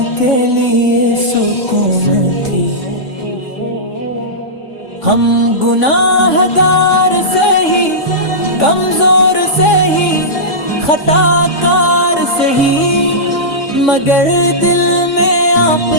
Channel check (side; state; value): right; late; 3.5 ms